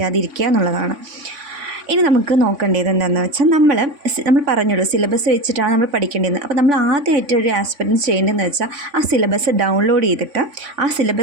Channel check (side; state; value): left; late; 3.5 ms